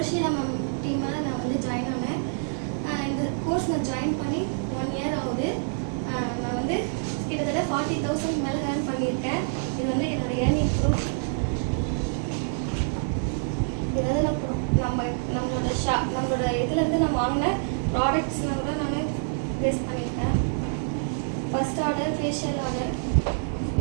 மேம் டீமில் நான் வந்து ஜாயின் ஆனேன். இந்த கோர்ஸ் நான் ஜாயின் பண்ணி 1 இயர் ஆகுது. நான் வந்து கிட்டத்தட்ட 40,000 மேலே ஏர்ன் பண்ணியிருக்கேன். இது வந்து என்னோட ஏர்னிங் ப்ரூஃப். இது வந்து நம்மளோட இதுலேருந்து நான் வாங்கின ப்ராடக்ட்ஸ்லாம் கூட நான் வேஸ்ட் பண்ணியிருக்கேன். First order facial order,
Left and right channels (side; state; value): left; silent; 56 dB below the other